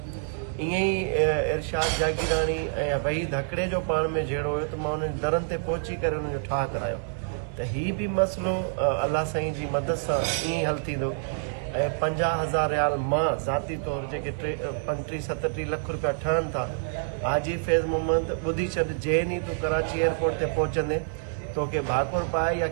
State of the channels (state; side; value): silent; left; 60 dB below the other